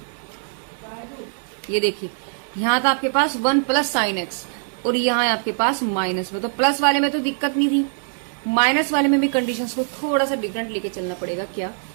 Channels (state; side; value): silent; left; digital silence